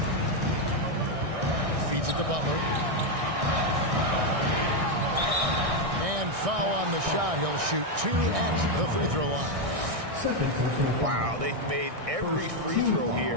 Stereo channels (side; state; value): left; late; 1.6 ms